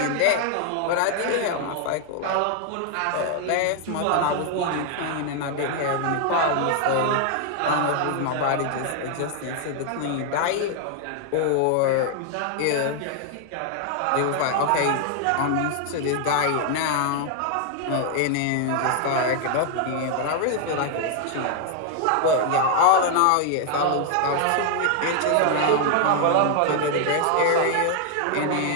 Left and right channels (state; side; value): different; both; correlation 0.00